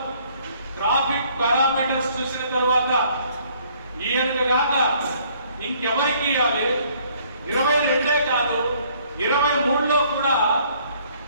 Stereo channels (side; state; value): both; inverted; correlation -0.62